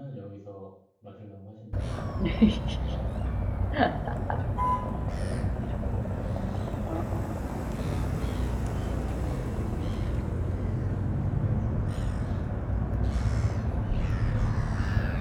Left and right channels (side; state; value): both; identical; correlation 1.00